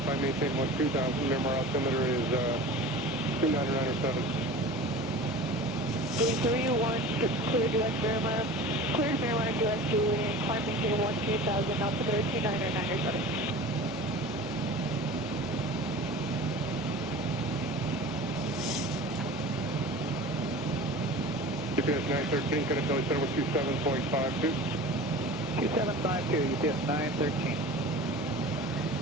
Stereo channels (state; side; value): normal; both; correlation 0.37